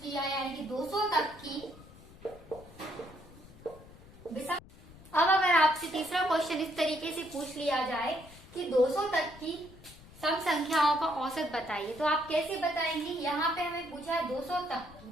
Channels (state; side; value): noise; left; rumble, 20 dB below the sound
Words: लिया यानी कि 200 तक की विषम, अब अगर आपसे तीसरा क्वेश्चन इस तरीके से पूछ लिया जाए कि 200 तक की सम संख्याओं का औसत बताइए, तो आप कैसे बताएंगे। यहाँ पे हमें पूछा है 200 तक की,